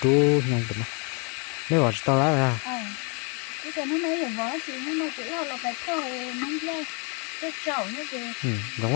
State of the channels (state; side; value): quieter; right; 35.0 dB